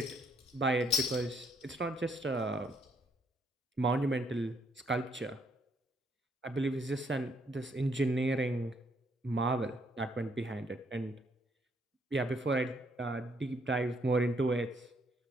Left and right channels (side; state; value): both; normal; correlation 0.70